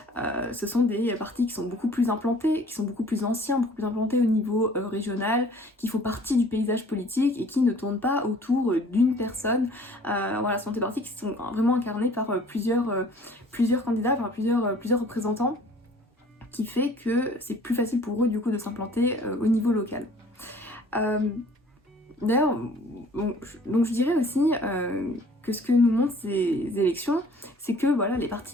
ce sont des partis qui sont beaucoup plus implantés, qui sont beaucoup plus anciens, beaucoup plus implantés au niveau régional, qui font partie du paysage politique et qui ne tournent pas autour d'une personne. Voilà, ce sont des partis qui sont vraiment incarnés par plusieurs candidats, par plusieurs représentants, qui fait que c'est plus facile pour eux du coup de s'implanter au niveau local. D'ailleurs, donc je dirais aussi que ce que nous montrent ces élections, c'est que voilà, les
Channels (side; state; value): both; normal; correlation 0.52